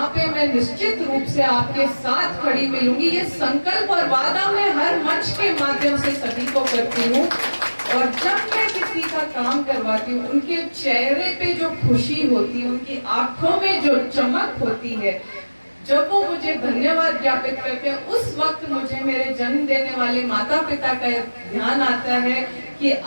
पे मैं निश्चित रूप से आपके साथ खड़ी मिलूंगी। ये संकल्प और वादा मैं हर मंच के माध्यम से सभी को करती हूँ। और जब मैं किसी का काम करवाती हूँ, उनके चेहरे पे जो खुशी होती है, उनकी आंखों में जो चमक होती है, जब वो मुझे धन्यवाद ज्ञापित करते हैं, उस वक्त मुझे मेरे जन्म देने वाले माता पिता का ध्यान आता है कि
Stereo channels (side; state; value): both; inverted; correlation -1.00